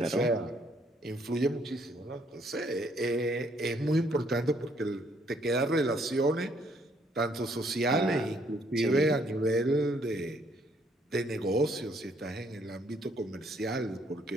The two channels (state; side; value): normal; both; correlation 0.67